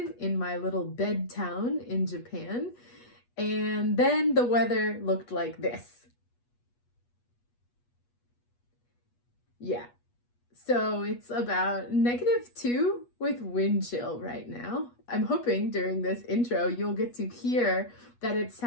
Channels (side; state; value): right; late; 8.3 ms